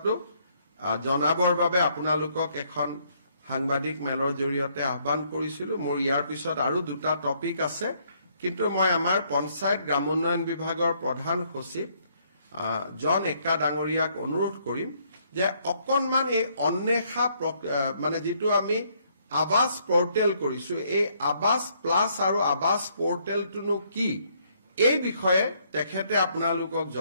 জনাবৰ বাবে আপোনালোকক এখন সাংবাদিক মেলৰ জৰিয়তে আহ্বান কৰিছিলো মোৰ ইয়াৰ পিছত আৰু দুটা টপিক আছে কিন্তু মই আমাৰ পঞ্চায়ত গ্ৰামোন্নয়ন বিভাগৰ প্ৰধান সচিব জন একা ডাঙৰীয়াক অনুৰোধ কৰিম যে অকনমান এই অন্বেষা মানে যেটো আমি আৱাস পোৰ্টেল কৰিছো এই আৱাস প্লাস আৰু আৱাস পোৰ্টেলটো কি এই বিষয়ে তেখেতে আপোনালোকক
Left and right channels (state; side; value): inverted; both; correlation -0.69